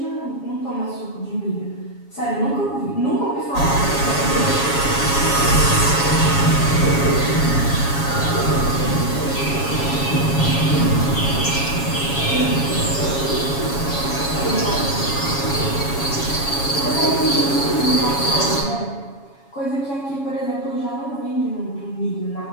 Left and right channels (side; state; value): right; late; 7.2 ms